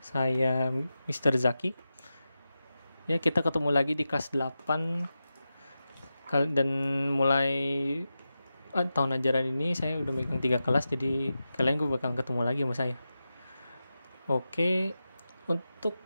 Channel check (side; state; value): both; inverted; correlation -0.92